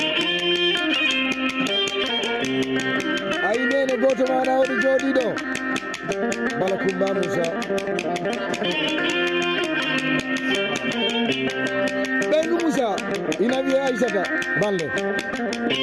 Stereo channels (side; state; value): left; noise; hum, 29 dB below the sound